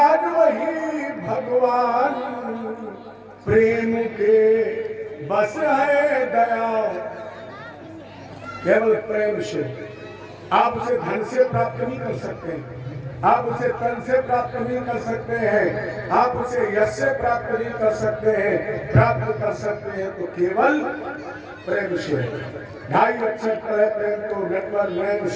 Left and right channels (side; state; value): both; identical; correlation 1.00